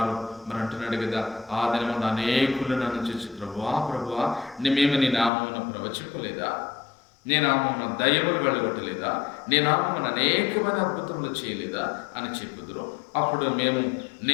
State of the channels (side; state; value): right; drops out; at 5.3 s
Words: మరి అంటున్నాడు కదా, ఆ దినమున అనేకులు నన్ను చూసి ప్రభువా మేము నీ నామమున ప్రవచింపలేదా, నీ నామమున దయ్యములు వెళ్ళగొట్టలేదా, నీ నామమున అనేకమైన అద్భుతములు చేయలేదా అని చెప్పుదురు. అప్పుడు